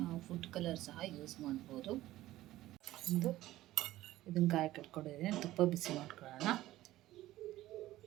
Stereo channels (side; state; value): left; quieter; 15.6 dB